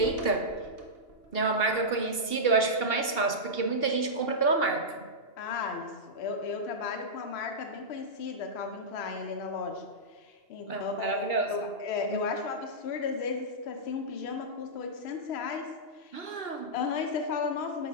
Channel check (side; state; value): right; late; 2.8 ms